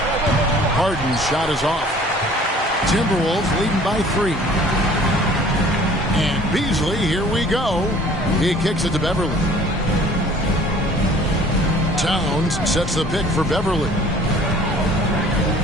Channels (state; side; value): normal; both; correlation 0.51